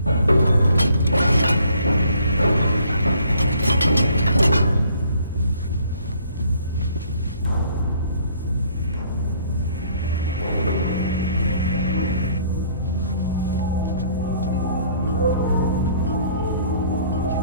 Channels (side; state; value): both; inverted; correlation -0.60